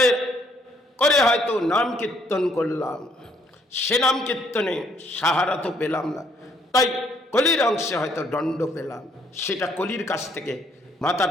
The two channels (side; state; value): both; normal; correlation 0.67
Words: করে হয়তো নাম কীর্তন করলাম, সে নাম কীর্তনে সাহারা তো পেলাম না। তাই কলির অংশে হয়তো দণ্ড পেলাম, সেটা কলির কাছ থেকে মাথা